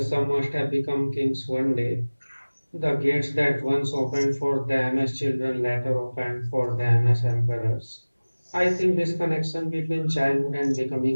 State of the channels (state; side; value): inverted; both; correlation -1.00